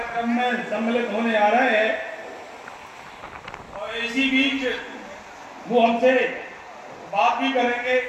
में सम्मिलित होने आ रहे हैं और इसी बीच वो हमसे बात भी करेंगे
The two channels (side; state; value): both; identical; correlation 1.00